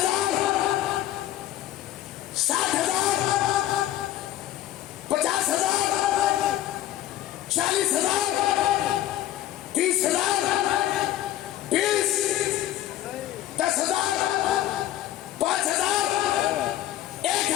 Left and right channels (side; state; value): right; quieter; 13.3 dB